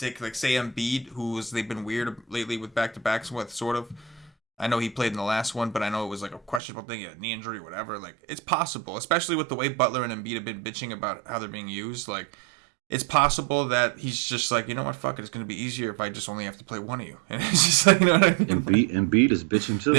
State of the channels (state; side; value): drops out; left; at 6.6 s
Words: say Embiid, they've been weird lately with back-to-backs with, sort of. I know he played in the last one, but I know it was like a questionable thing, a knee injury, whatever. Like, it's possible, especially with the way Butler and Embiid have been bitching about how they're being used. Like, it's possible that he's just like, you know what, fuck it, it's going to be easier if I just only have to play one of you. And it's just like, you know what I mean? Embiid is bitching too.